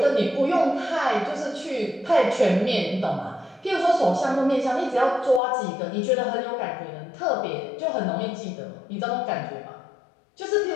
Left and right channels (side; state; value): right; drops out; at 5.4 s